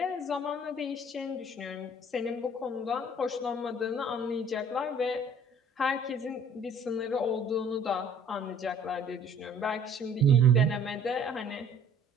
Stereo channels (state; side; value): normal; both; correlation 0.54